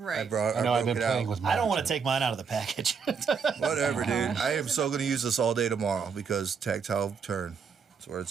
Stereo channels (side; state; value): left; quieter; 6.0 dB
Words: I know I've been playing with mine. I don't want to too. take mine out of the package. Whatever, dude. I am so gonna use this all day tomorrow because tactile turn. That's where